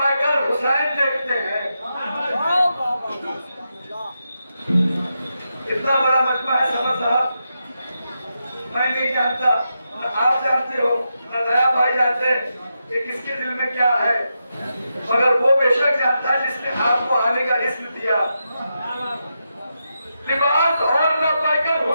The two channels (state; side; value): inverted; both; correlation -0.86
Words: हुसैन देखते हैं। इतना बड़ा मजमा है समर साहब, मैं नहीं जानता, न आप जानते हो, न नया भाई जानते हैं कि किसके दिल में क्या है, मगर वो बेशक जानता है जिसने आपको आने का इज्म दिया। लिबास और न पाकर